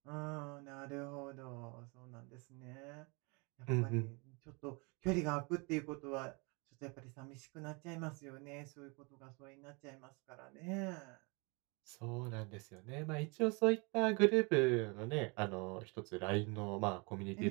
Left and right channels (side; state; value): left; quieter; 30.4 dB